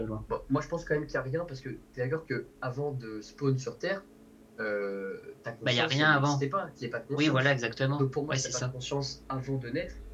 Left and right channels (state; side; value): identical; both; correlation 1.00